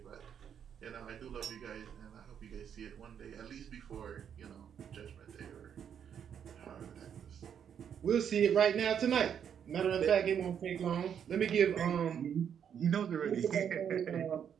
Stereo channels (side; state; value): left; quieter; 8.3 dB